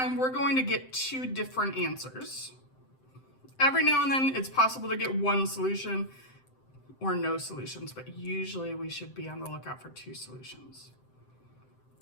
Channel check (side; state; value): right; late; 7.7 ms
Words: we're going to get two different answers. Every now and then, it's possible to get one solution or no solutions, but usually we should be on the lookout for two solutions.